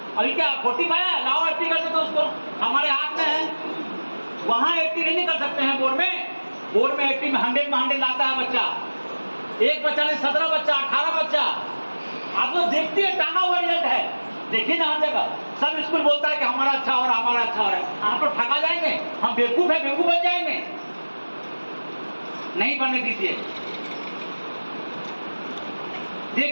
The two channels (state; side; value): inverted; both; correlation -1.00